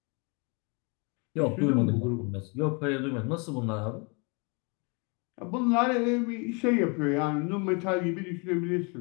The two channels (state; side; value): quieter; right; 32.5 dB